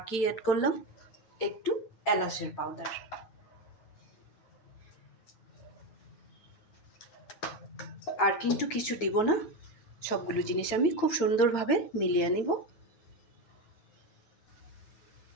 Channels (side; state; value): right; late; 8.9 ms